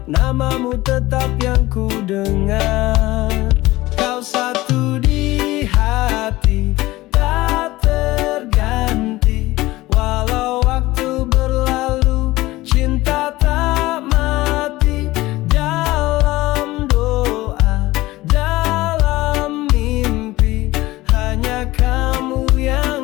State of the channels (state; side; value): quieter; right; 18.4 dB